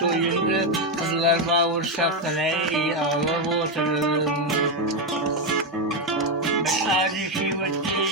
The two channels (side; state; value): both; normal; correlation 0.06